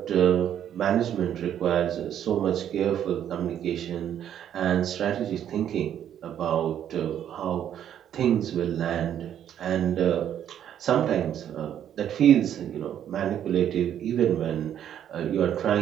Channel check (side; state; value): left; quieter; 10.1 dB